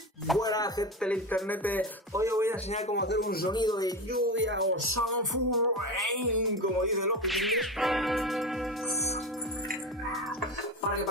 Buena gente del internet, hoy os voy a enseñar cómo hacer un sonido de lluvia o sound rain, como dicen los piquillos, para que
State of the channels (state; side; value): normal; both; correlation 0.24